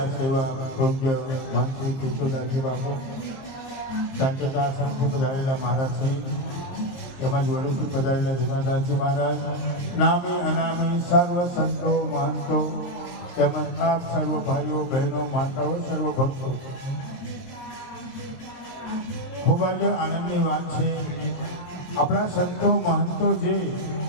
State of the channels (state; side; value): late; right; 23 ms